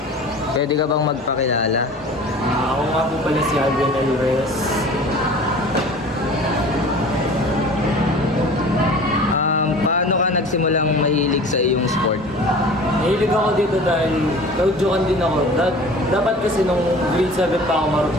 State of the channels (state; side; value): normal; both; correlation 0.42